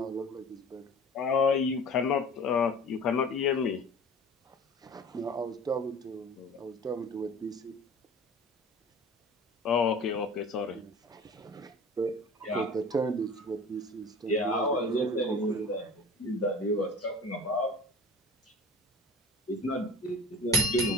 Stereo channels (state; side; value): normal; both; correlation 0.41